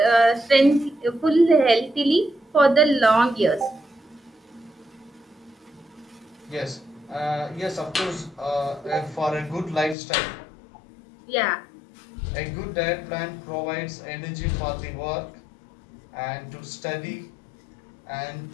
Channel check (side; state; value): right; drops out; at 10.0 s